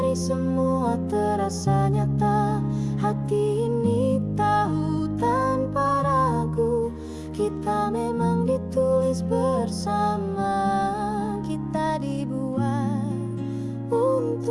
kini semua terasa nyata. Hati ini tahu tanpa ragu, kita memang ditulis bersama. Kita dibuat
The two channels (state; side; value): identical; both; correlation 1.00